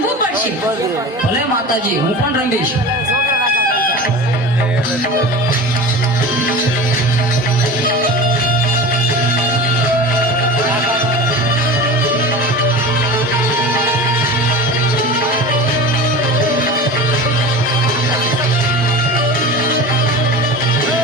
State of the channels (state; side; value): normal; both; correlation 0.33